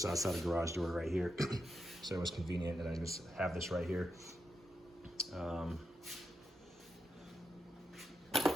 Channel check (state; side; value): normal; both; correlation 0.84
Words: outside the garage door right here. So it was convenient that I just have this right here.